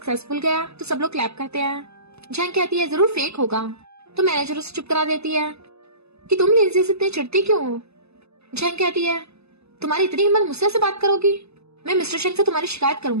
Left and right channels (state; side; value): late; left; 0.79 ms